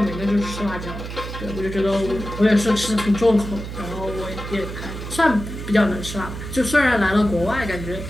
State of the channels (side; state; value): right; noise; hum, 8 dB below the sound